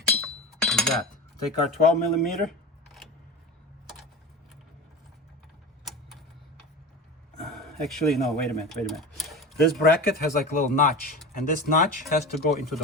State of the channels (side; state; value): both; normal; correlation 0.29